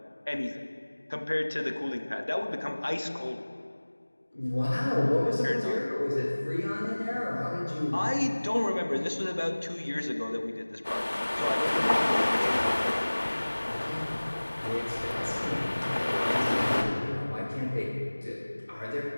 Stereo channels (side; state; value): both; inverted; correlation -1.00